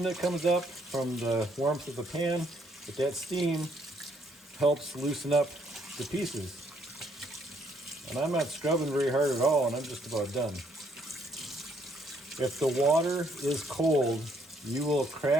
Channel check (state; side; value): normal; both; correlation 0.69